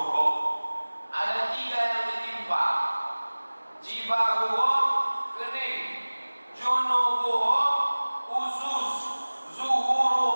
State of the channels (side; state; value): both; inverted; correlation -1.00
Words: ada 3 yang ditimpa. Jibahuhum kening, junubuhum usus,